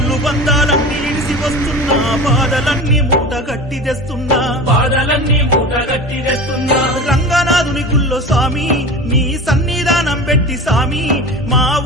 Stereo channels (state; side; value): normal; both; correlation 0.32